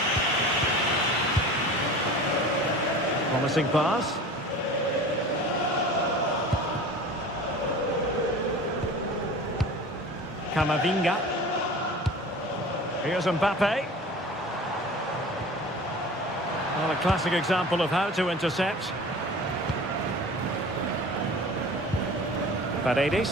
Promising pass. Camavinga. Here's Mbappe. Well, a classic example of how to intercept.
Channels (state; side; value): normal; both; correlation 0.39